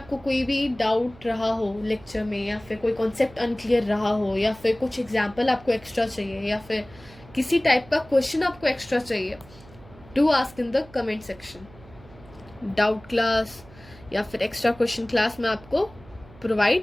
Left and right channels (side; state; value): right; noise; hum, 22 dB below the sound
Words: कोई भी डाउट रहा हो लेक्चर में, या फिर कोई कॉन्सेप्ट अनक्लियर रहा हो, या फिर कुछ एग्जाम्पल आपको एक्स्ट्रा चाहिए, या फिर किसी टाइप का क्वेश्चन आपको एक्स्ट्रा चाहिए, do ask in the comment section. Doubt class या फिर एक्स्ट्रा क्वेश्चन क्लास मैं आपको